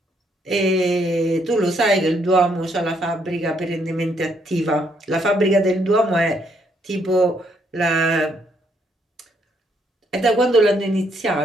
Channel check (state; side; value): normal; both; correlation 0.72